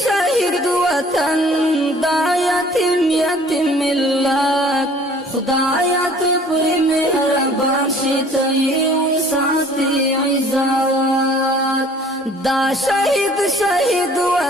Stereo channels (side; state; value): both; normal; correlation 0.53